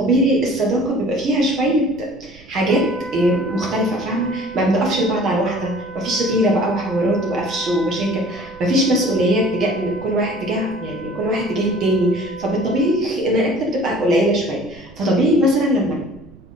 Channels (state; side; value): noise; right; rumble, 23 dB below the sound